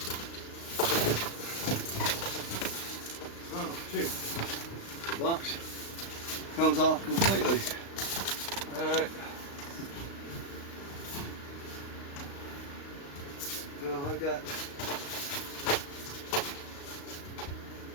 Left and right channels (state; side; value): late; right; 35 ms